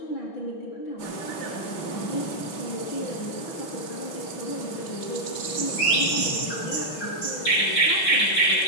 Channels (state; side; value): late; right; 6.1 ms